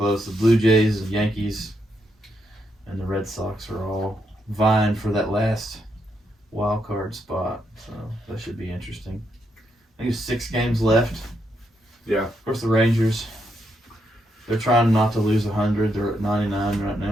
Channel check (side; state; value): both; normal; correlation 0.79